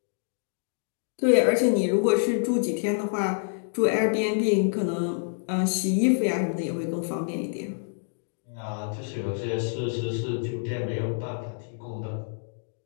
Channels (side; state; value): right; silent; digital silence